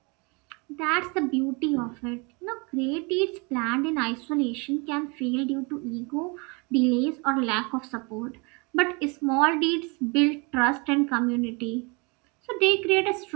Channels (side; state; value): left; quieter; 30.4 dB